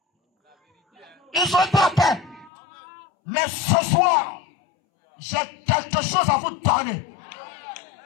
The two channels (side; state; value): right; drops out; at 2.5 s